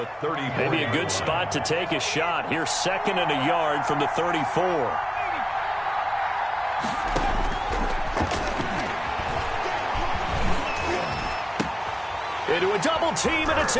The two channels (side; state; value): both; identical; correlation 1.00